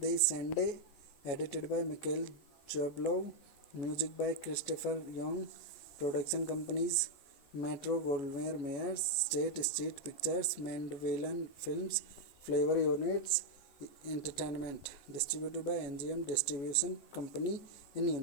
Sande, edited by Michael Jablow, music by Christopher Young. Production companies Metro Goldwyn Mayers, State Street Pictures, Mandeville Films, Flavor Units Entertainment. Distributed by MGM Distribution Company in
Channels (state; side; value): late; right; 14 ms